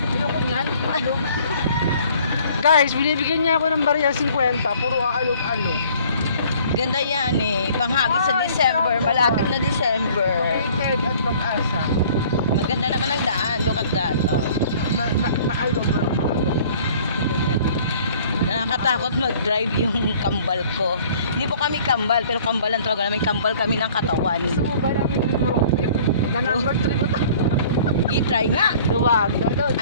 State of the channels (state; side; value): inverted; both; correlation -0.53